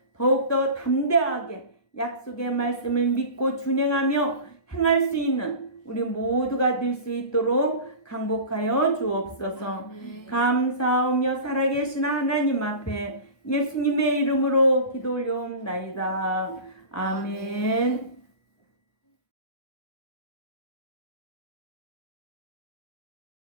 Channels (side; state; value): right; late; 1.2 ms